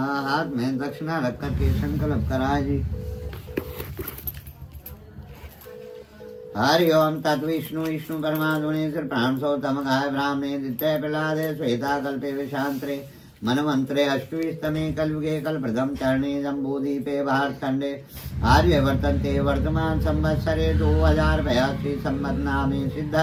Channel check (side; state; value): both; identical; correlation 1.00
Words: हाथ में दक्षिणा रख करके संकल्प कराए जी। हरि ओम तत्विष्णु विष्णु परमात्मने प्राणसोतम गाय ब्राह्मणे द्वितीय प्रहलादे श्वेता कल्पे विशांतरे मनमंत्रे अष्टविस्तमे कलयुगे कल्प्रथम चरणे जम्बूदीपे भारतखंडे आर्य वर्तन्ते वर्तमान संवत्सरे 2082 संवत् नामे